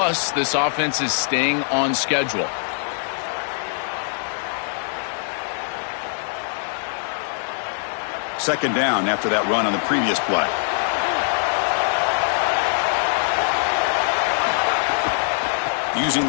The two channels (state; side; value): silent; right; digital silence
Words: this offense is staying on schedule. Second down after that run on the previous play. Using